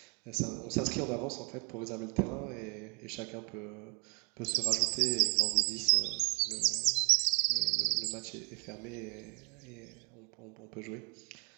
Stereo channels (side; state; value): left; quieter; 34.0 dB